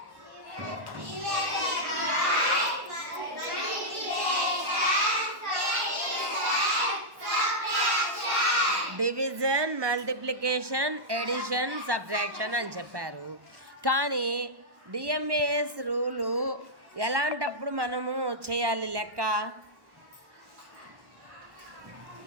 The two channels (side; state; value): left; late; 1.1 ms